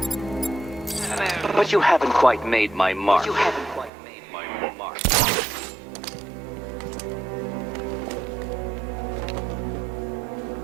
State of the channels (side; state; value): left; drops out; at 3.9 s